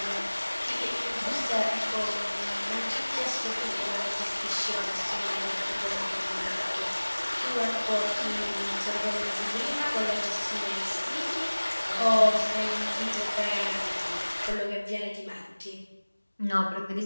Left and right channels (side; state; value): both; inverted; correlation -1.00